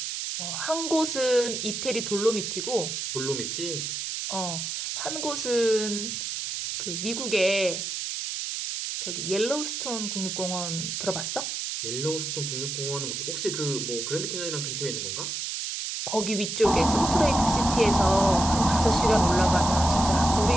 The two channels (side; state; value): right; noise; hiss, 4 dB below the sound